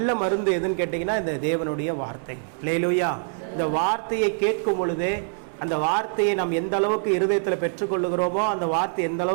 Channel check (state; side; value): silent; left; 62 dB below the other